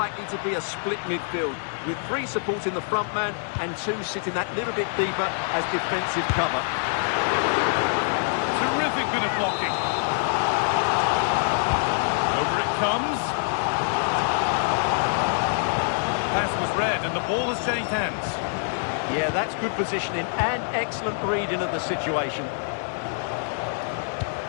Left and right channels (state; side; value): silent; right; digital silence